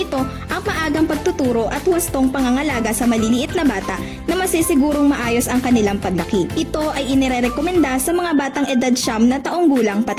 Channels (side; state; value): both; identical; correlation 1.00